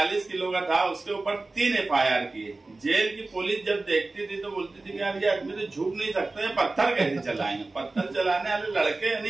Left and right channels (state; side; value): quieter; left; 3.3 dB